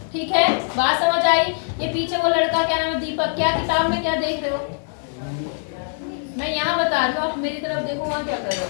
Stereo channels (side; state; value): right; silent; 64 dB below the other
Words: ठीक है, बात समझ आई। ये पीछे वो लड़का क्या नाम है, दीपक, क्या किताब में क्या देख रहे हो, मैं यहाँ बता रही हूँ, आप मेरी तरफ देखो, वहाँ क्या कर रहे हो।